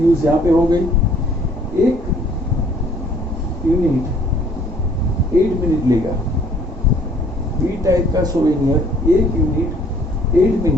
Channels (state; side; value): normal; both; correlation 0.59